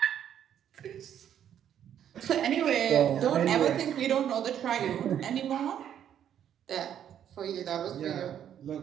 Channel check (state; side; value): quieter; left; 9.8 dB